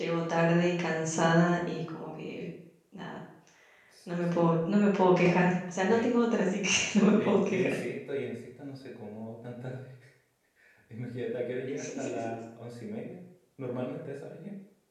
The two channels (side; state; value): both; identical; correlation 1.00